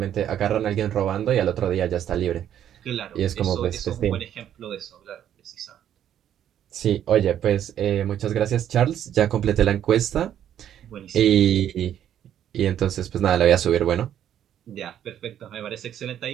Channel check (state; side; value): quieter; left; 10.4 dB